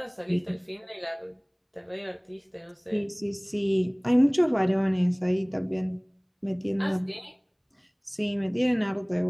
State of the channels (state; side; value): identical; both; correlation 1.00